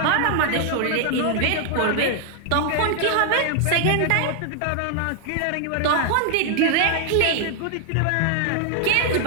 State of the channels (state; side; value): different; both; correlation 0.00